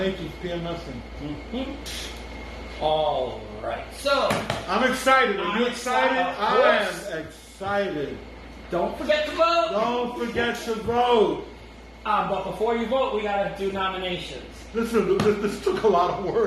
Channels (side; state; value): both; identical; correlation 1.00